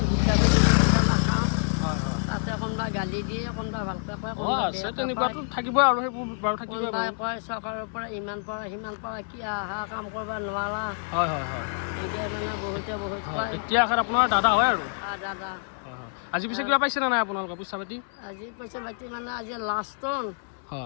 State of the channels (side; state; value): right; silent; digital silence